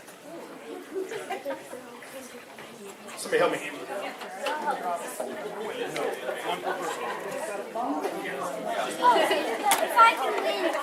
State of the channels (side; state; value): both; identical; correlation 1.00